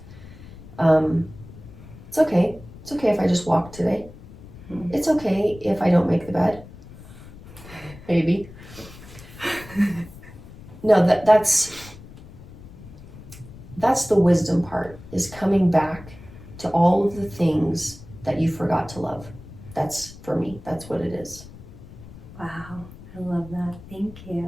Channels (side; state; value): left; noise; rumble, 17 dB below the sound